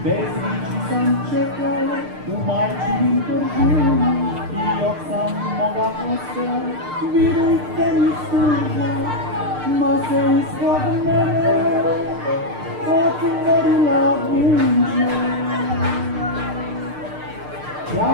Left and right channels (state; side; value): late; left; 6.6 ms